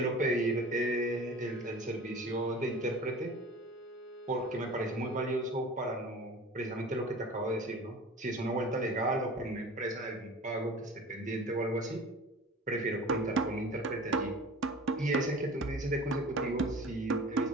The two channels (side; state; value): both; normal; correlation 0.40